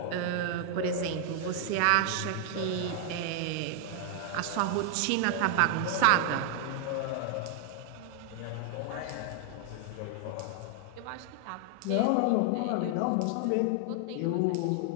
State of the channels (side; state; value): both; different; correlation 0.00